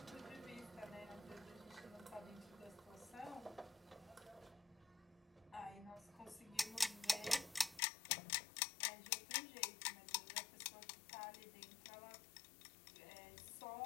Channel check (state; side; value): drops out; right; at 7.8 s